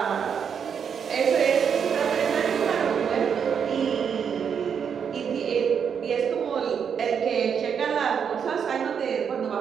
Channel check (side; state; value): left; quieter; 7.2 dB